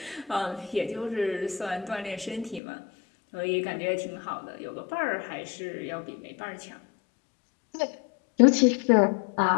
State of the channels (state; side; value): drops out; right; at 2.6 s